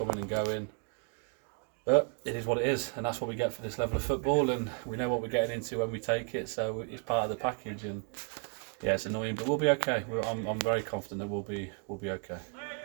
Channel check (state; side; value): quieter; left; 39.8 dB